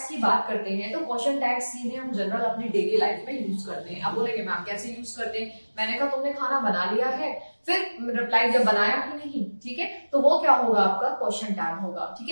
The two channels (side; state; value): both; inverted; correlation -1.00